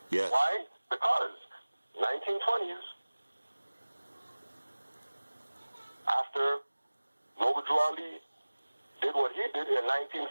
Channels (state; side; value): inverted; both; correlation -1.00